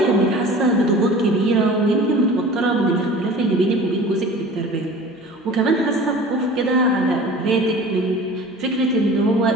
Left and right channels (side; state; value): both; normal; correlation 0.41